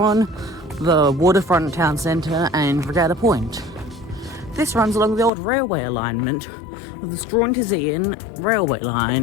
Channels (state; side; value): drops out; right; at 5.3 s